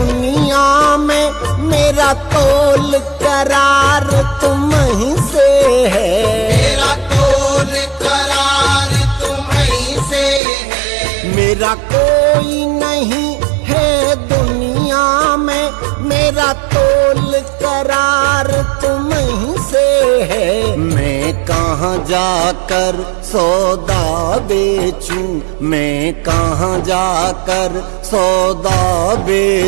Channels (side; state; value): left; drops out; at 10.4 s